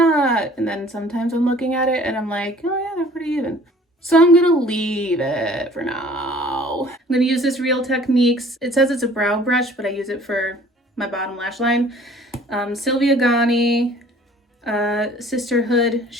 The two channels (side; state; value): both; normal; correlation 0.52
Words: And then sometimes I'm looking at it and I'm like, oh yeah, they're pretty even. So I'm gonna leave it for now. I'm gonna use this Real Techniques. It says it's a brow brush, but I use it for my bottom lash line. Sylvia Gani, Sisterhood